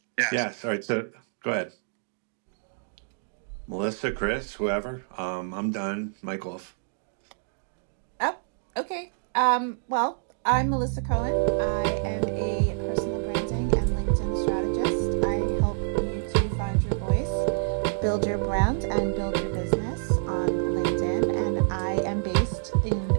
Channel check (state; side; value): silent; left; digital silence